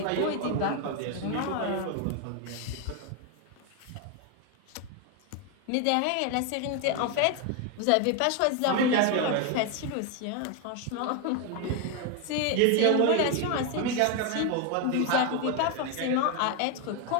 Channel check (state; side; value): different; both; correlation 0.01